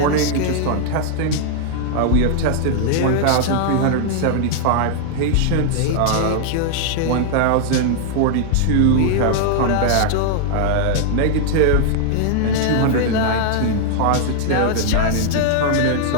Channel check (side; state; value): both; different; correlation -0.01